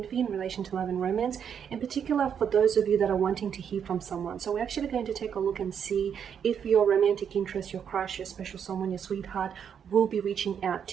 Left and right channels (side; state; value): left; quieter; 7.9 dB